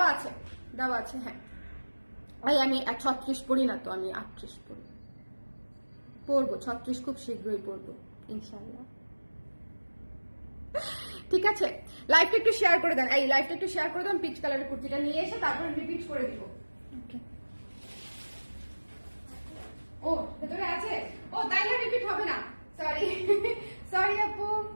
আছে, দেওয়া আছে। হ্যাঁ, আমি 36 পড়ি না তো, আমি 38 পড়ি, পরবো 36 খুব শীঘ্রই পরবো ইনশাল্লাহ, ঠিক আছে? লাইভটা একটু শেয়ার করে দেন, এই লাইভটা একটু শেয়ার করে দেন। পিচ কালারের কুর্তিটা নিয়ে এসে তারপরে রিপিট করে দিব। ও ভেতরে আছে, ও তাইলে রিপিট হবে না, সরি সরি আপু।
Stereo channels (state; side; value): inverted; both; correlation -1.00